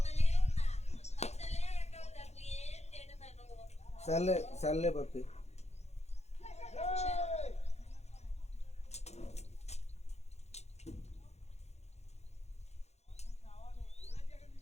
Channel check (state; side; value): late; right; 0.32 ms